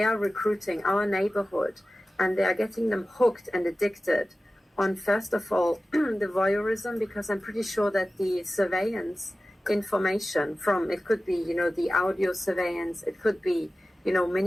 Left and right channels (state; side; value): normal; both; correlation 0.96